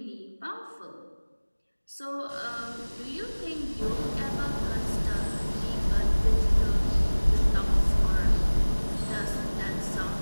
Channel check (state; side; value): inverted; both; correlation -1.00